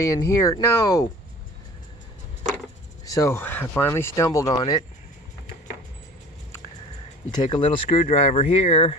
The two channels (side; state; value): both; normal; correlation 0.42